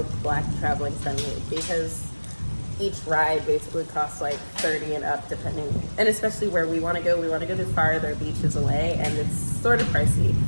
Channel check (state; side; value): inverted; both; correlation -1.00